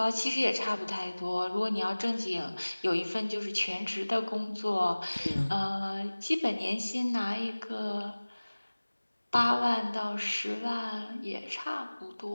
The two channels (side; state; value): both; inverted; correlation -1.00